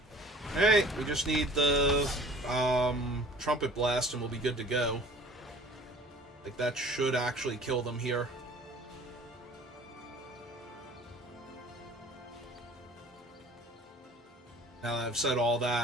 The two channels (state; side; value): normal; both; correlation 0.48